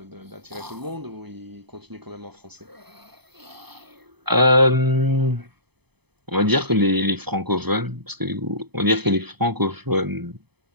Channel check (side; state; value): left; late; 0.98 ms